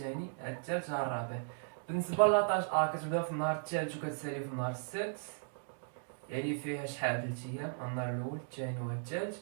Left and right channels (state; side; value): silent; left; digital silence